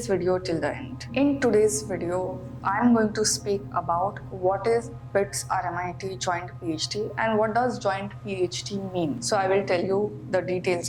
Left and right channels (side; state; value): both; identical; correlation 1.00